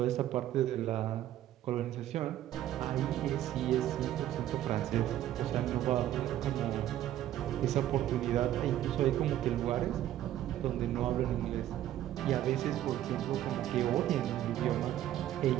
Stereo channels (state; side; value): quieter; left; 12.7 dB